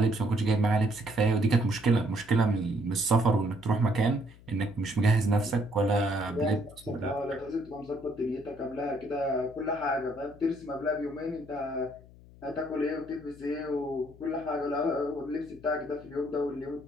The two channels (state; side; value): noise; left; hum, 22 dB below the sound